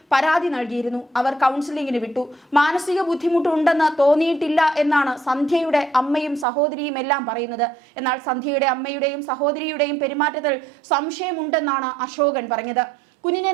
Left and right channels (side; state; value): left; drops out; at 6.5 s